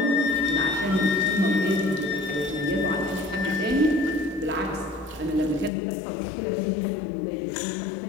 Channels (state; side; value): drops out; right; at 5.7 s